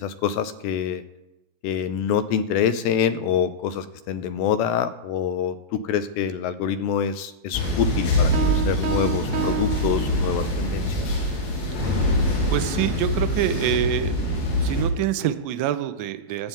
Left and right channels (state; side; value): late; right; 15 ms